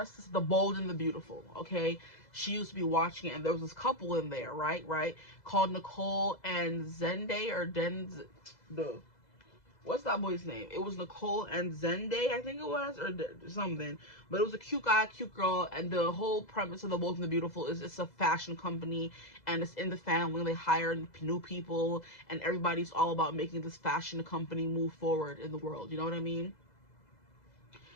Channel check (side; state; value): right; late; 2.0 ms